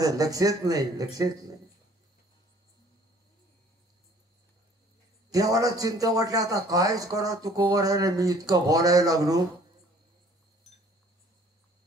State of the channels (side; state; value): both; normal; correlation 0.55